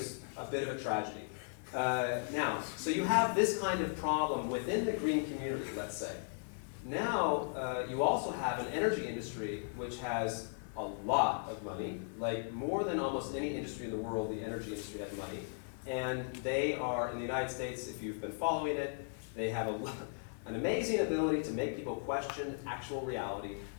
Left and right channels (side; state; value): right; silent; 53 dB below the other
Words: a bit of a tragedy. Now, so you have this kind of problem within the green community, let's say. Now, you also have an energy industry which has a lot of money, like more than almost any industry in the world, the energy industry has money. And they are, in the United States, if you've been following it, they have an amazing ability to make people question actual reality.